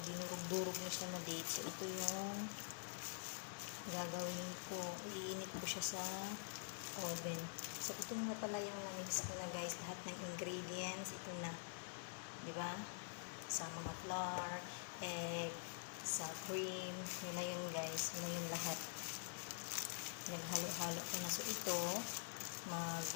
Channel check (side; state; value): right; silent; digital silence